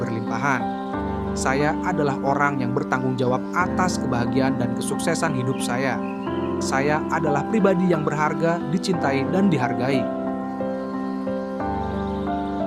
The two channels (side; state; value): both; identical; correlation 1.00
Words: Saya adalah orang yang bertanggung jawab atas kebahagiaan dan kesuksesan hidup saya. Saya adalah pribadi yang berharga, dicintai, dan dihargai.